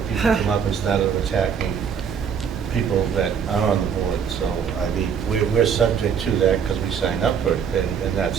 people come up and started attacking people that are on the board, so, I mean, we're subject to that because we signed up for it, and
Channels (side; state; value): left; quieter; 7.2 dB